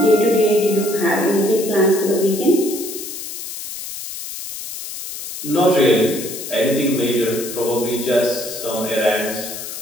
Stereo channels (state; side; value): noise; left; hiss, 9 dB below the sound